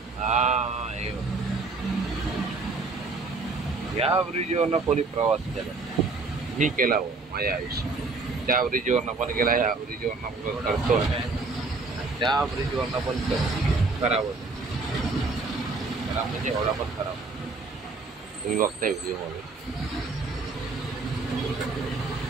हा, या ब्रिजवरनं कोणी प्रवास केला, मी केला हो माझ्या आयुष्यात. त्या ब्रिजवरनं पण गेला, या ब्रिजवरनं पण करतो, त्या ब्रिजवरनं पण खराब होतं. खराब म्हणजे एवढा पण खराब, तुम्ही बघताय व्हिडिओमध्ये.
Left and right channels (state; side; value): quieter; left; 3.8 dB